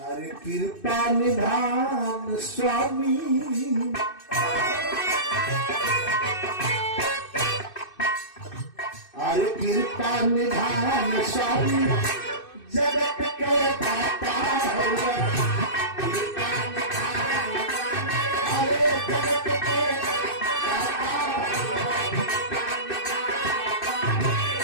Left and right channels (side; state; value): right; late; 2.6 ms